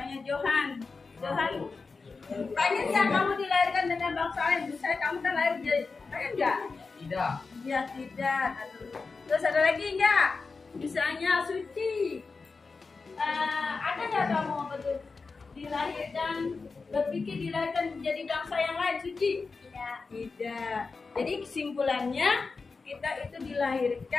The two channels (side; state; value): right; quieter; 4.4 dB